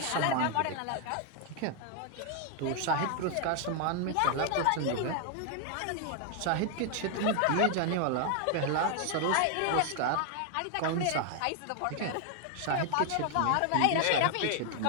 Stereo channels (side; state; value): both; different; correlation 0.00